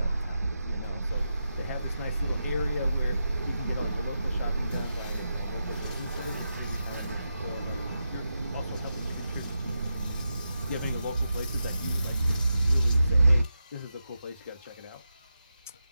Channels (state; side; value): inverted; both; correlation -0.88